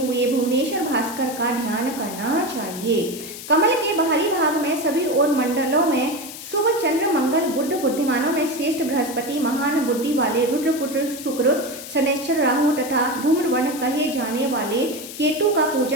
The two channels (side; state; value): left; noise; hiss, 12 dB below the sound